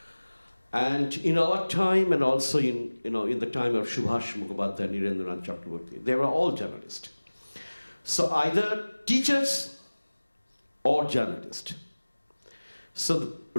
And in our time, and also in the time of Subhash Mukhopadhyay, Nirendranath Chakraborty, they were all journalists. So either teachers or journalist. So the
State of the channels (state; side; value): inverted; both; correlation -1.00